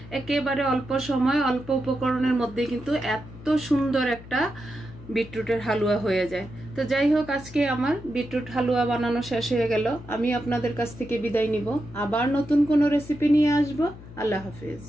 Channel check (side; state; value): left; noise; hum, 17 dB below the sound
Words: একেবারে অল্প সময় অল্প উপকরণের মধ্যে কিন্তু এত সুন্দর একটা বিটরুটের হালুয়া হয়ে যায়। তো যাই হোক, আজকে আমার বিটরুট হালুয়া বানানো শেষ হয়ে গেল। আমি আপনাদের কাছ থেকে বিদায় নিব, আবার নতুন কোনো রেসিপি নিয়ে আসবো। আল্লাহ হাফেজ।